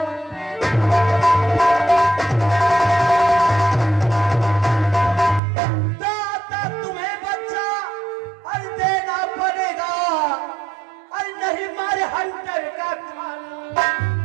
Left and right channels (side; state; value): left; drops out; at 5.4 s